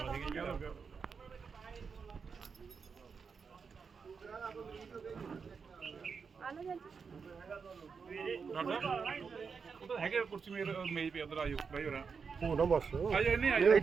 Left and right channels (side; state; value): left; quieter; 5.6 dB